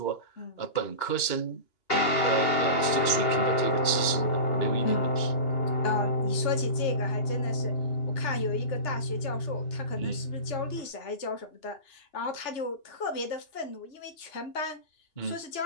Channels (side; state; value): right; late; 2.8 ms